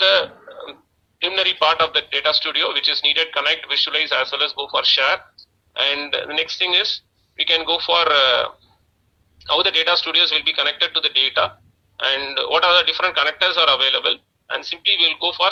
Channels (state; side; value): identical; both; correlation 1.00